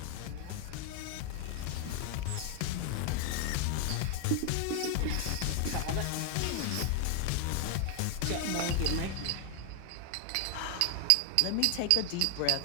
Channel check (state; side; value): different; both; correlation 0.00